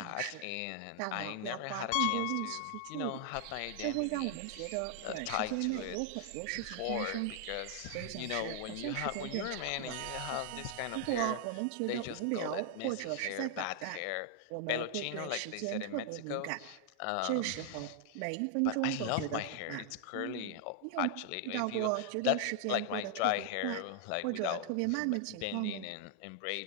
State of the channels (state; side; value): different; both; correlation 0.00